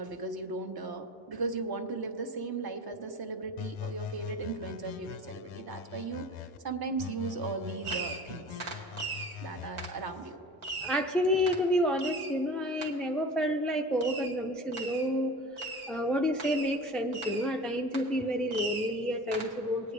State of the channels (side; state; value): both; normal; correlation 0.38